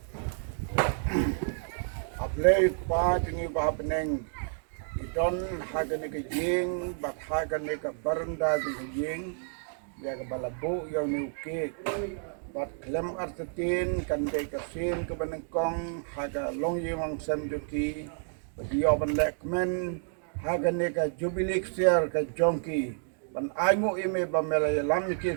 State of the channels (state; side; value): silent; left; digital silence